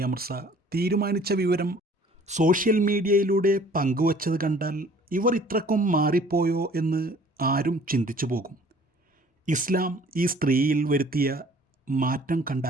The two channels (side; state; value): both; normal; correlation 0.53